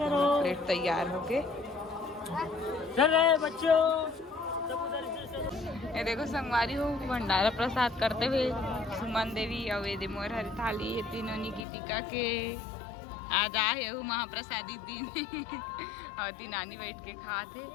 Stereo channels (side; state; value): right; drops out; at 11.7 s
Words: तैयार हो गए। ये देखो संगवारी हो भंडारा प्रसाद करते हुए सुमन देवी और ये मोर हरी थाली ये तीनों निकितिका के आज आए हो महाप्रसादी दिन और तीन नानी बैठ के खाते